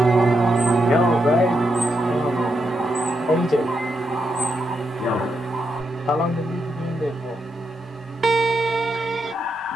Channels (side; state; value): both; normal; correlation 0.82